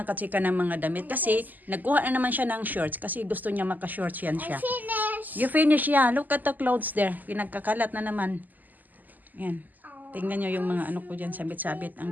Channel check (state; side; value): late; left; 0.084 ms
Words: katsika ng mga damit kasi nagkuha na naman siya ng shorts kasi gusto niya maka-shorts yan siya. Finish. You finish, yeah. Look at the clothes there. Pinagkakalat na naman. Yan. Tingnan nyo yung mga ano ko dyan, sabit-sabit. Ang